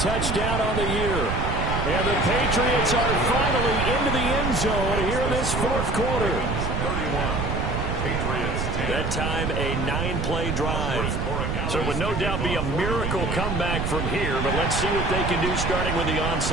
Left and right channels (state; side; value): noise; right; rumble, 1 dB below the sound